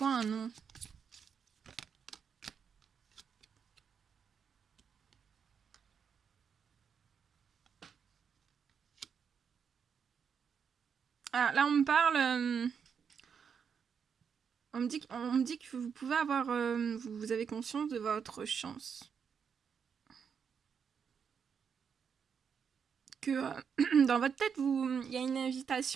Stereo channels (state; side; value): quieter; left; 6.8 dB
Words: un non? Ah, là, on me parle... on me dit que vous pouvez avoir... vous avez conscience de votre chance. Que dans votre tête, il y a une